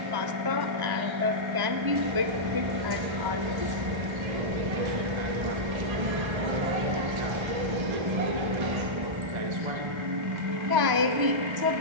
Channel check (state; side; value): late; left; 1.3 ms